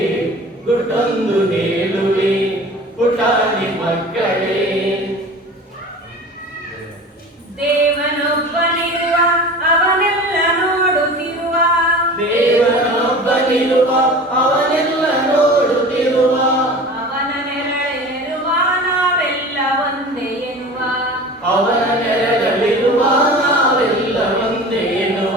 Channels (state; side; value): normal; both; correlation 0.38